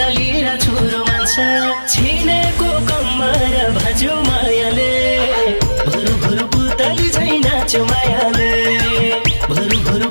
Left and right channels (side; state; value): both; inverted; correlation -1.00